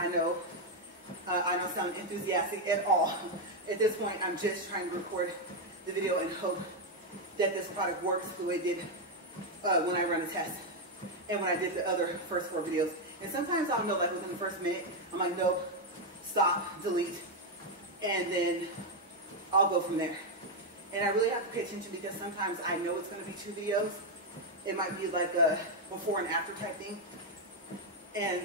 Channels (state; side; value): normal; both; correlation 0.02